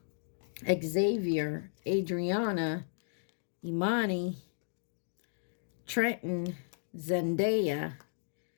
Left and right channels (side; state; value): right; silent; digital silence